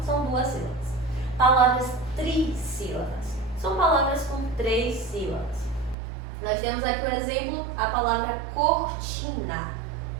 são 2 sílabas. Palavras trissílabas. São palavras com 3 sílabas. Nós temos aqui o exemplo, a palavra cortina.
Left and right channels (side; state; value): left; drops out; at 6.0 s